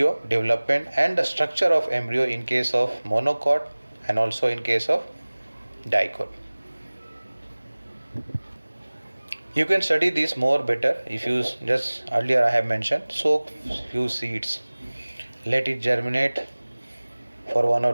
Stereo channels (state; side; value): inverted; both; correlation -1.00